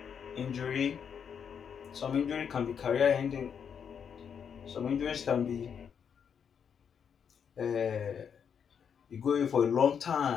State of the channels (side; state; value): right; quieter; 7.4 dB